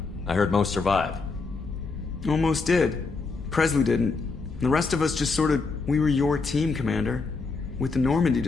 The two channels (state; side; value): quieter; right; 4.2 dB